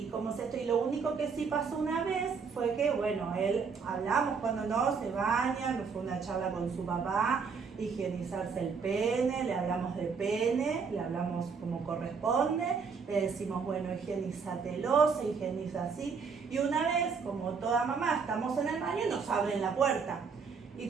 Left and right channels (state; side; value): quieter; left; 5.5 dB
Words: como se y lo único que sí pasó una vez fue que, bueno, hablamos cuando no se baña, nos fue una charla con su papá, higienizarse el pene, le hablamos de pene, le hablamos como corresponde, le decimos, bueno, higienízatelo, se higieniza así. Y una vez, como toda mamá, estamos en el baño y nos abren la puerta. Y